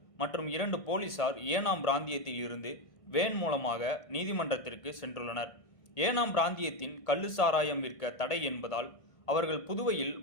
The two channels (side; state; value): right; late; 1.5 ms